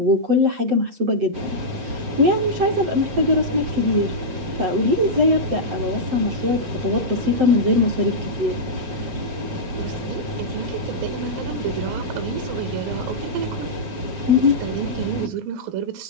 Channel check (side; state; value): left; late; 7.6 ms